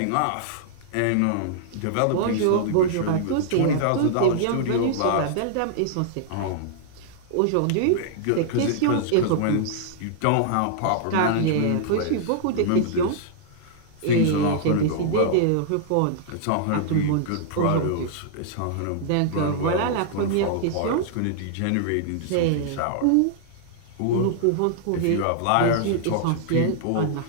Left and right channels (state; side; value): different; both; correlation -0.01